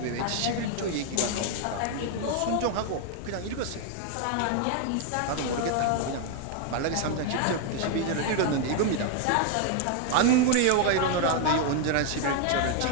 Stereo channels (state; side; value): different; both; correlation 0.00